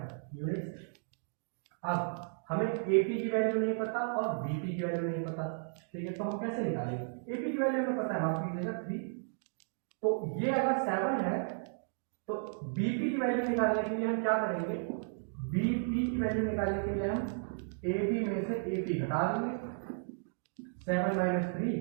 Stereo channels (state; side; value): silent; left; digital silence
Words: यूनिट्स। अब हमें AP की वैल्यू नहीं पता और BP की वैल्यू नहीं पता, ठीक है। तो हम कैसे निकालेंगे, AP की वैल्यू हमें पता है, माफ कीजिएगा 3, तो ये अगर 7 है तो BP की वैल्यू निकालने के लिए हम क्या करेंगे, BP की वैल्यू निकालने के लिए हम AB में से AP घटा देंगे, 7 - 3,